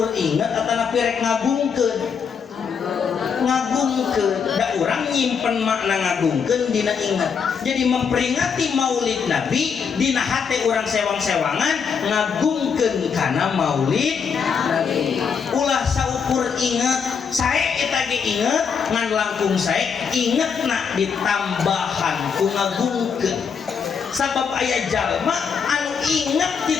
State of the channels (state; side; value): quieter; right; 6.4 dB